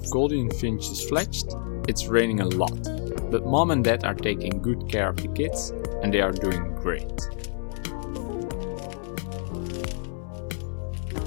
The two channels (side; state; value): right; silent; digital silence